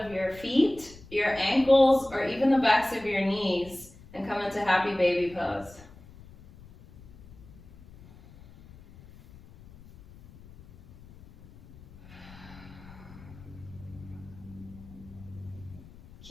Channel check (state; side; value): noise; left; rumble, 21 dB below the sound